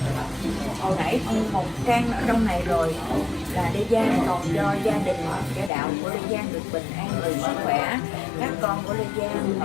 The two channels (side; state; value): right; drops out; at 5.7 s